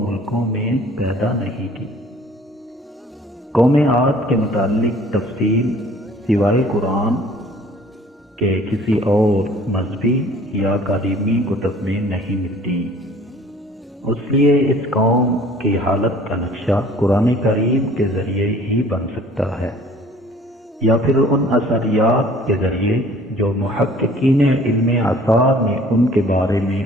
ملکوں میں پیدا نہیں کی۔ قوم عاد کے متعلق تفصیل سوائے قرآن کے کسی اور مذہبی یا قدیمی کتب میں نہیں ملتی، اس لیے اس قوم کی حالت کا نقشہ قرآن کریم کے ذریعے ہی بن سکتا ہے، یا پھر ان اثریات کے ذریعے جو محققین علم آثار نے ان کے بارے میں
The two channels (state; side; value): normal; both; correlation 0.52